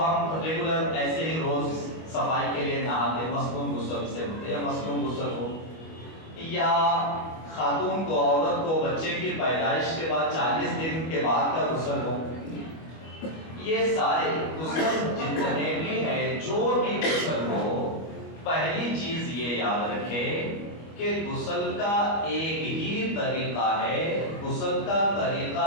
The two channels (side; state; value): right; late; 25 ms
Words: ریگولر ایسے ہی روز صفائی کے لیے نہاتے، مسنون غسل سے ہوتے، یا مسنون غسل ہو، یا خاتون کو، عورت کو بچے کی پیدائش کے بعد 40 دن کے بعد کا غسل ہو، یہ سارے غسل جتنے بھی ہیں، جو بھی غسل ہو، پہلی چیز یہ یاد رکھے کہ غسل کا ایک ہی طریقہ ہے، غسل کا طریقہ